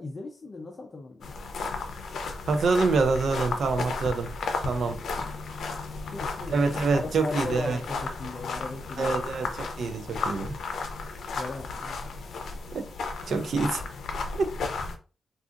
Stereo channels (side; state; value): both; normal; correlation 0.82